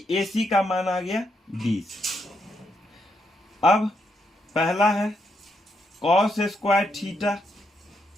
ए सी का मान आ गया 20। अब पहला है cos square theta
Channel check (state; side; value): normal; both; correlation 0.78